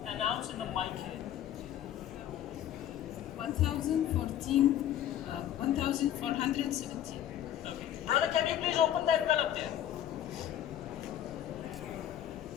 Announce in the mic here. 1014, 1417. Okay. Brother, can you please open the envelope there?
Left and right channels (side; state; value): right; quieter; 11.3 dB